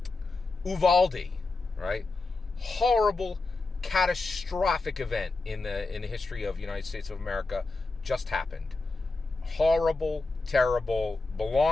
Uvalde, right? Horrible, catastrophic event in the history of the United States of America just happened. Horrible, terrible,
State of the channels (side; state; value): right; quieter; 3.5 dB